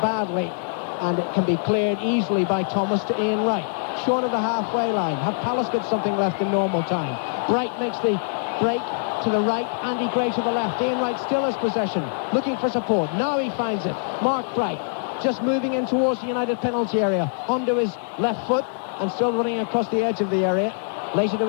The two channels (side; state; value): right; silent; digital silence